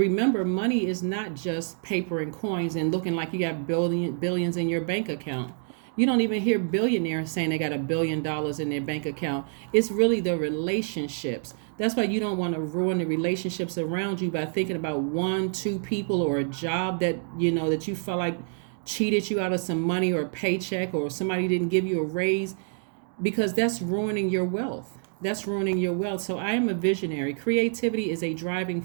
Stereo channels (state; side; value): silent; left; 60 dB below the other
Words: money is not just paper and coins and looking like you got billions in your bank account. You don't even hear billionaires saying they got $1 billion in their bank account. It's really the relationships. That's why you don't want to ruin the relationships around you by thinking about 1-2 people or a job that that you felt like cheated you out of some money or a paycheck, or somebody didn't give you a raise, because that's ruining your wealth. That's ruining your wealth. So I am a visionary. Creativity is a driving